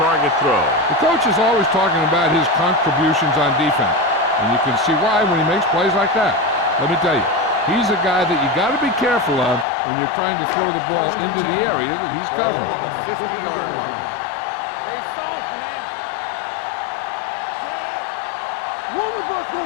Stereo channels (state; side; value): drops out; right; at 9.7 s